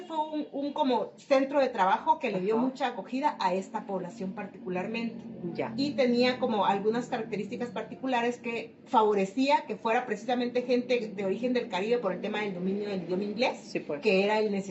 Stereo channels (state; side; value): identical; both; correlation 1.00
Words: fue un como centro de trabajo que le dio mucha acogida a esta población particularmente. Ya. Y tenía como algunas características particulares que favorecía que fuera precisamente gente de origen del Caribe por el tema del dominio del idioma inglés, sí, pues. que era el